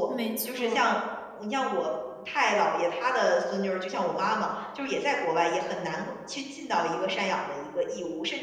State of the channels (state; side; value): identical; both; correlation 1.00